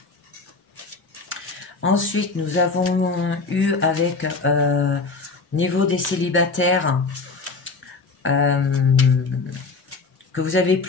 Ensuite, nous avons eu avec niveau des célibataires que vous avez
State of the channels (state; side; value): quieter; right; 4.0 dB